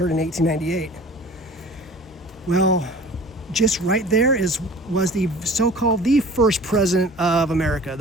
in 1898. Well, just right there was the so-called the first president of America,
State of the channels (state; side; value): normal; both; correlation 0.44